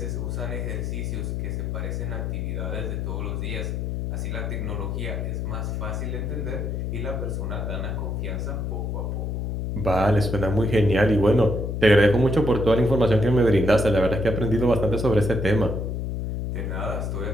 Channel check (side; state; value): left; noise; hum, 2 dB below the sound